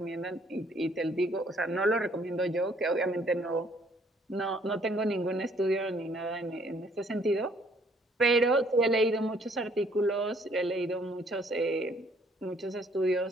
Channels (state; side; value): normal; both; correlation 0.63